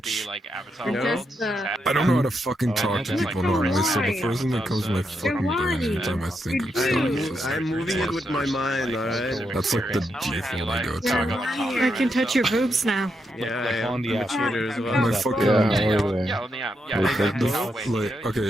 Just, I don't know how to fucking talk to people normally, so the first thing that comes to my fucking brain every time I think of stuff is just I'm moving it with my mind, alright? that's like the default I go to. I can touch your boobs now. Yeah, I'm a cheater as well. My fucking Yeah, how are they? like, okay,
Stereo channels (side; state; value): both; normal; correlation 0.82